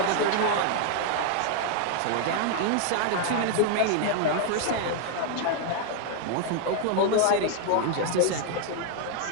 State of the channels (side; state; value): both; different; correlation 0.00